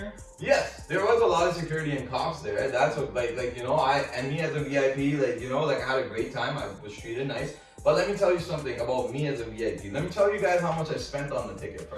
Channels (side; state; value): both; identical; correlation 1.00